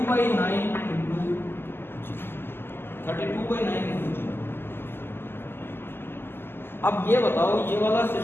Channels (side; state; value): right; late; 0.11 ms